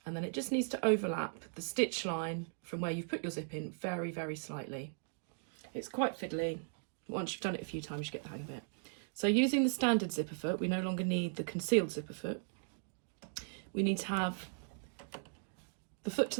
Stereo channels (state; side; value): silent; left; digital silence